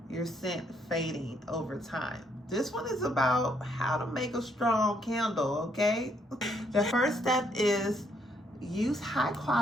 your scent fading over time. This one is about how to make a strong candle, okay? The first step is use high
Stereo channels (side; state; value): both; normal; correlation 0.71